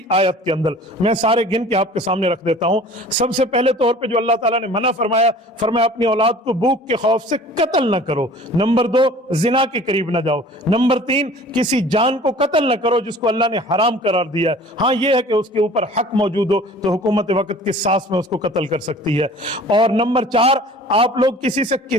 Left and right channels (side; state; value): both; normal; correlation 0.46